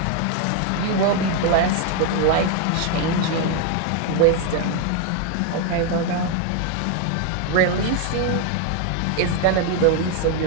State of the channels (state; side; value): different; both; correlation 0.01